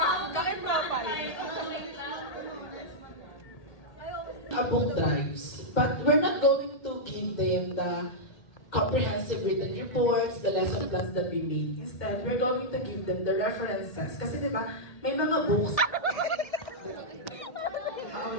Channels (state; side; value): late; right; 1.8 ms